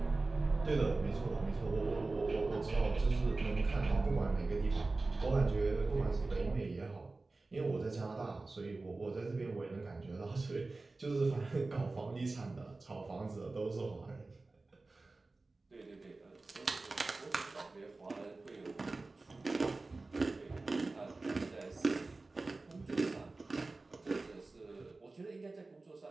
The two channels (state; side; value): quieter; left; 3.4 dB